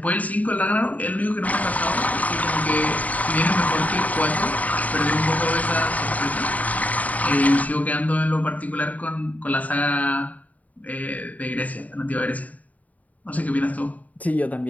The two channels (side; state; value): right; late; 0.072 ms